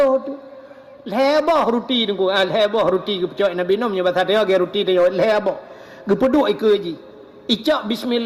tu. Leboh roti tunggu. Leboh roti gepecok Nabi Nuh punya bahasa dia ge roti dia leboh. Gepeduk ikut je. Icok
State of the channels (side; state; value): both; identical; correlation 1.00